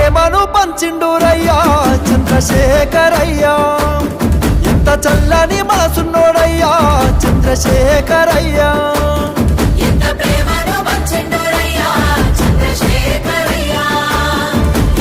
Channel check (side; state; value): both; identical; correlation 1.00